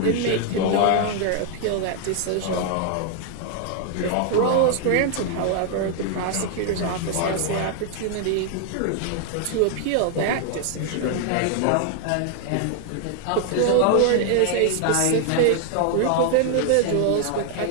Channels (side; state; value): both; different; correlation 0.00